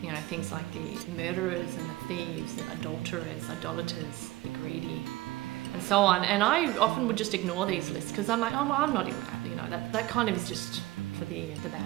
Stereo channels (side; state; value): left; quieter; 18.1 dB